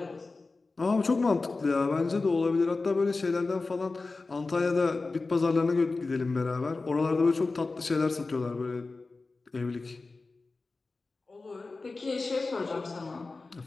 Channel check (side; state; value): right; quieter; 3.7 dB